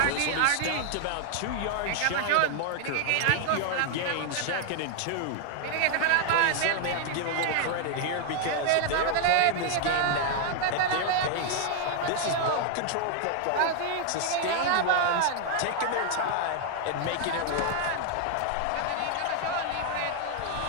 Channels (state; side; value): different; both; correlation 0.00